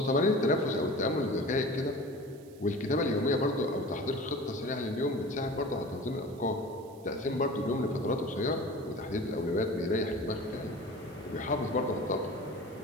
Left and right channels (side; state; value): right; noise; hiss, 26 dB below the sound